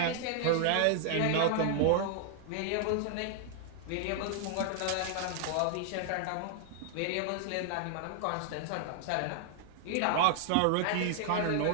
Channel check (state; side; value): different; both; correlation 0.00